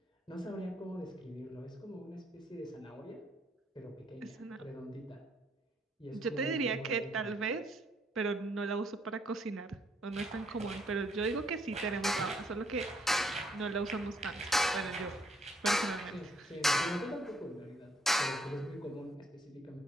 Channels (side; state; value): both; normal; correlation 0.68